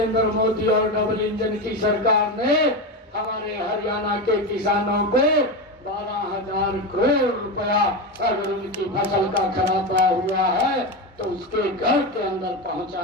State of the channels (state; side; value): normal; both; correlation 0.17